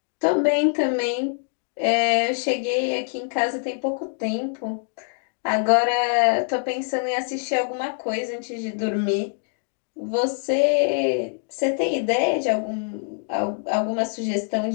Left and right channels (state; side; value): silent; right; 58 dB below the other